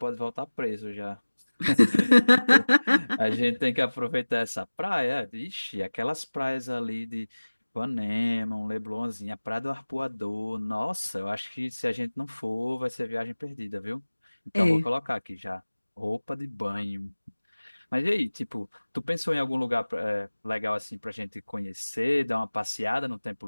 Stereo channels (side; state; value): both; inverted; correlation -1.00